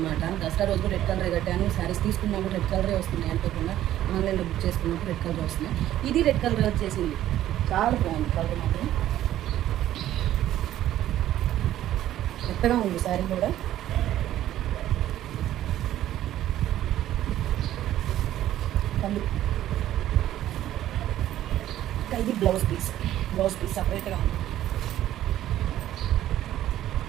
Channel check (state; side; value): quieter; left; 12.9 dB